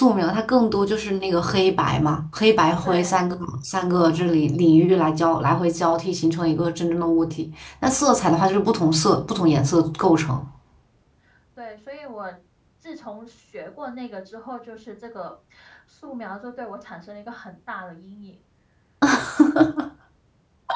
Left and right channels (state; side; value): identical; both; correlation 1.00